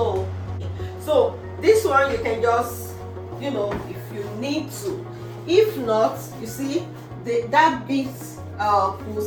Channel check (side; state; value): both; identical; correlation 1.00